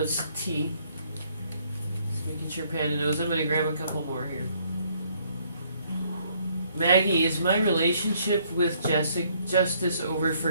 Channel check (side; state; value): both; inverted; correlation -0.66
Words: T. Just making sure Panda knows. I'm gonna grab a couple more here. Maggie, is my relationship with Justice over